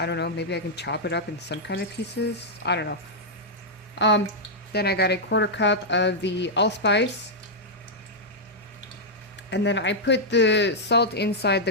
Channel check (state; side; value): normal; both; correlation -0.06